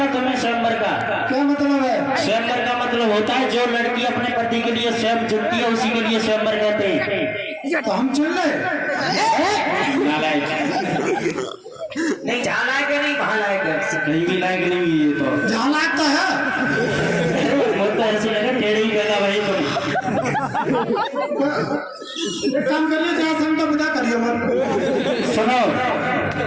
तुम्हें स्वयंवर का? क्या मतलब है? स्वयंवर का मतलब होता है जो लड़की अपने पति के लिए स्वयं चुनती है उसी के लिए स्वयंवर कहते हैं। तो हम चुन ले? नहीं जहाँ लायक है नहीं वहाँ लायक है। कहीं भी लायक नहीं ये तो जहाँ लायक तो है। वो तो ऐसे लगे टेढ़े ही कहना भाई तुम काम करिए जहाँ से हमको विदा करिए। सुनो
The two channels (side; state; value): both; identical; correlation 1.00